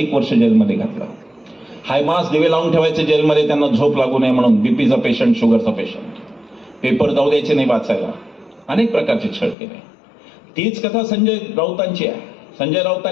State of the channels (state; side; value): drops out; right; at 9.6 s